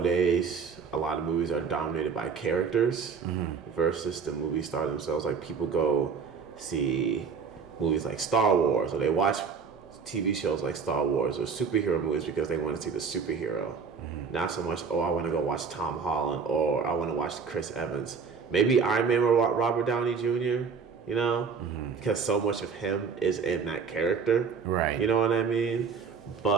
a lot of movies are dominated by characters versus the movie star themselves. Like people go see movies like Star Wars, or they watch TV shows like Star Wars or superhero movies because they want to see the superhero. Not so much, oh, I want to go watch Tom Holland or I want to watch Chris Evans. Maybe Iron Man or Robert Downey Jr., you know? Because so much of him is in that character. Right. You know what I mean?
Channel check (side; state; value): left; quieter; 5.8 dB